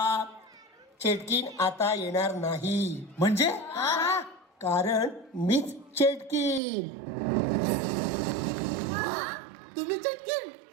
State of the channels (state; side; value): drops out; left; at 6.6 s